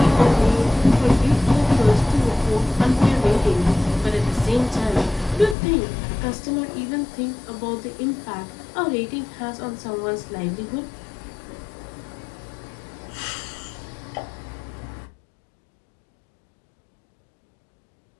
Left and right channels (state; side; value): drops out; right; at 5.6 s